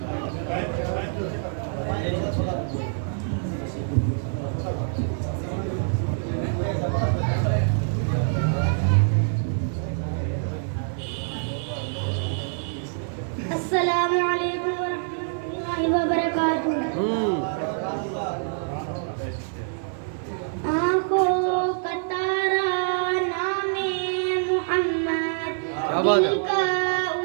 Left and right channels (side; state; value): left; silent; 55 dB below the other